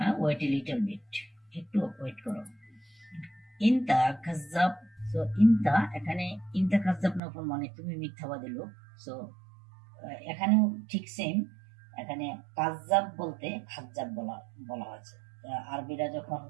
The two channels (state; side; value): drops out; left; at 7.2 s